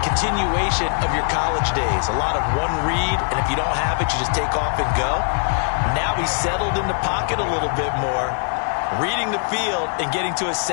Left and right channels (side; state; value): right; silent; 65 dB below the other